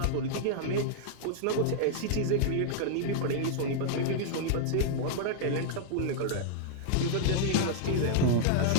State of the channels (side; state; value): both; different; correlation -0.01